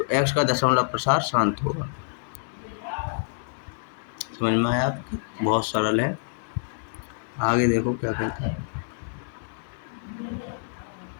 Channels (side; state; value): right; silent; 60 dB below the other